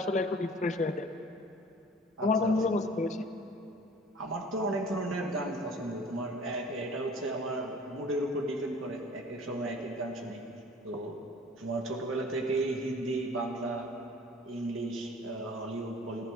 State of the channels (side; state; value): both; normal; correlation 0.48